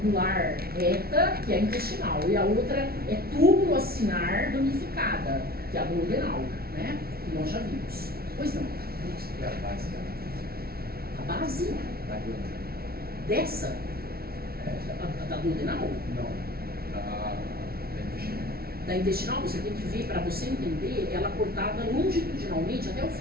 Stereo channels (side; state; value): left; late; 0.44 ms